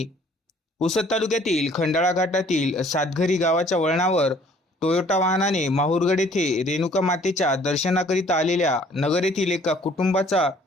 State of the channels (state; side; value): normal; both; correlation 0.57